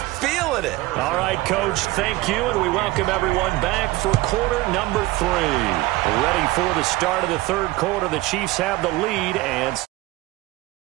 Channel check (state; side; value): quieter; left; 19.1 dB